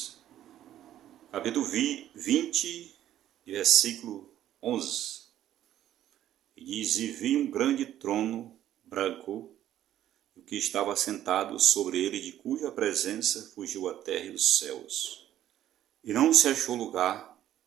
capítulo 20, versículo 11. E diz: E vi um grande trono branco, e o que estava sentado sobre ele, de cuja presença fugiu a terra e os céus. E não se achou lugar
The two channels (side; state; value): left; quieter; 12.1 dB